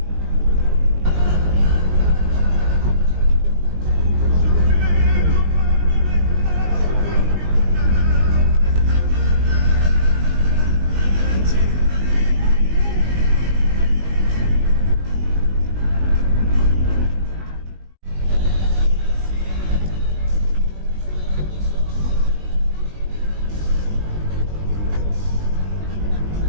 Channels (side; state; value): left; late; 20 ms